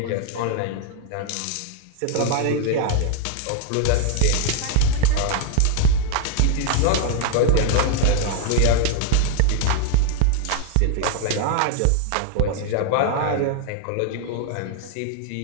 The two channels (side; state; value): both; different; correlation 0.00